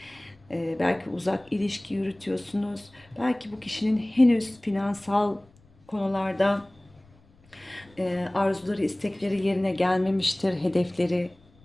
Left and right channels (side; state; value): left; noise; rumble, 29 dB below the sound